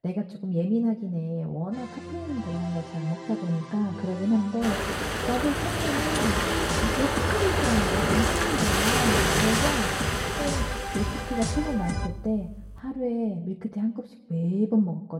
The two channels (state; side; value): identical; both; correlation 1.00